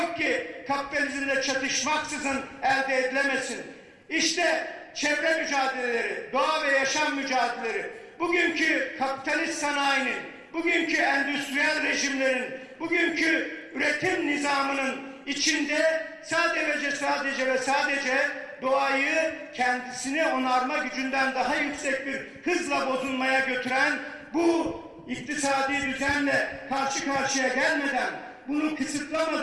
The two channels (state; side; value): identical; both; correlation 1.00